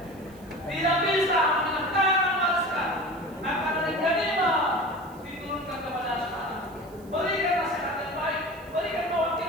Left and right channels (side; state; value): right; noise; hiss, 26 dB below the sound